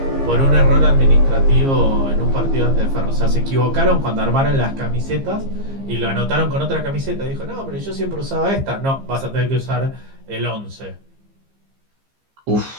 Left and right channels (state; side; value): late; left; 15 ms